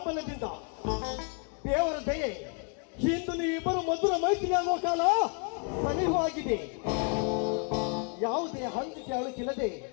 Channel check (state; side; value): quieter; right; 37.9 dB